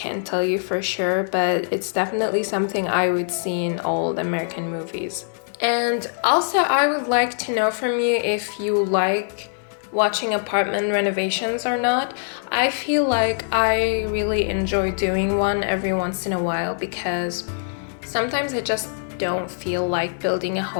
tell you for sure, but it's definitely something I would see in old American movies. And also, I would like to know from you if you like watching apartment renovations or not. I feel like I really enjoy doing one every once in a while because sometimes I just don't feel like building a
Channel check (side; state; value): right; silent; 60 dB below the other